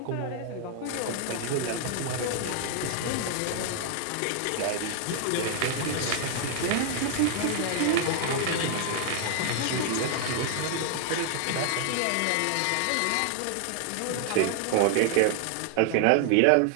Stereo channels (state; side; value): different; both; correlation 0.00